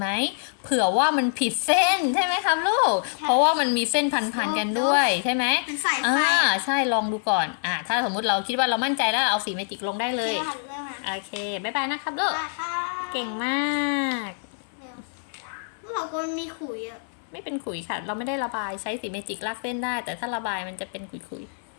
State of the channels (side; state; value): right; silent; 57 dB below the other